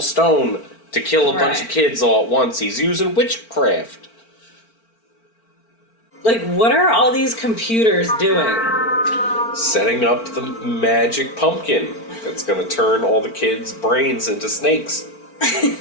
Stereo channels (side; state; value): right; late; 4.4 ms